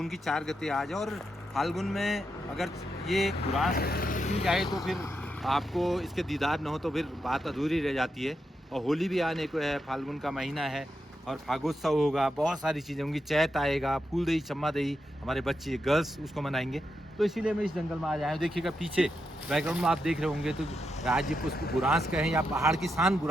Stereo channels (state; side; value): normal; both; correlation 0.85